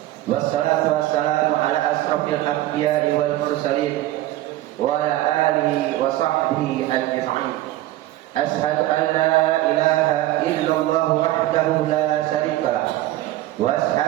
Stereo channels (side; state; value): left; quieter; 15.5 dB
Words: Wassalatu wassalamu ala asrofil anbiya'i wal mursalin wa ala alihi wa sahbihi ajma'in. Ashhadu an la ilaha illallah wahdahu la syarika lah wa